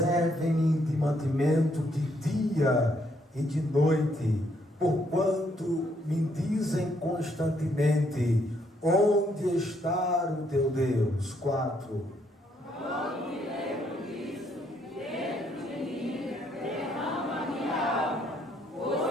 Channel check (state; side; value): normal; both; correlation 0.71